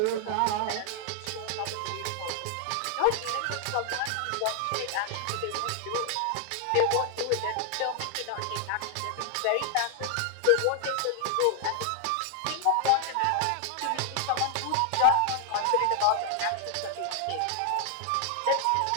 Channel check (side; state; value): both; different; correlation 0.00